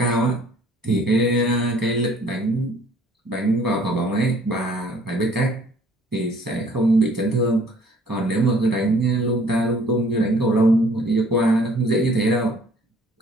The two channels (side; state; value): both; normal; correlation 0.56